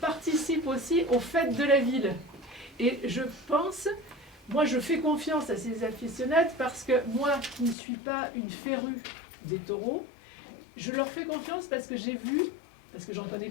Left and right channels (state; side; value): drops out; right; at 7.8 s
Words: participent aussi aux fêtes de la ville. Et je pense, moi, je fais confiance à ces aficionades parce que moi, qui ne suis pas une férue des taureaux, je leur fais confiance parce que j'ai vu, parce que j'en